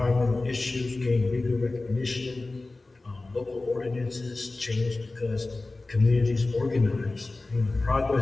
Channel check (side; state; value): right; quieter; 3.2 dB